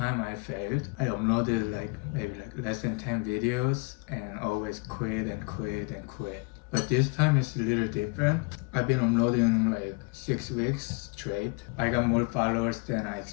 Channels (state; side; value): quieter; right; 30.4 dB